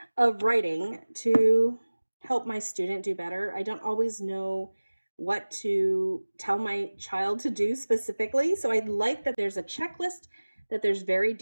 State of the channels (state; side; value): inverted; both; correlation -1.00